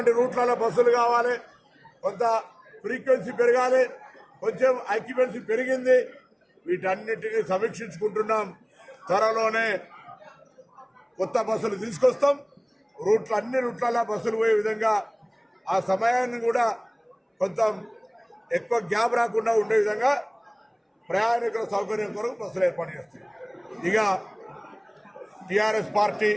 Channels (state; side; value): identical; both; correlation 1.00